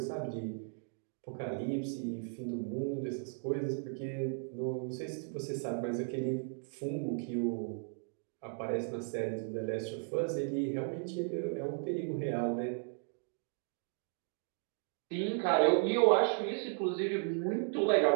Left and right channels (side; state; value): left; silent; 54 dB below the other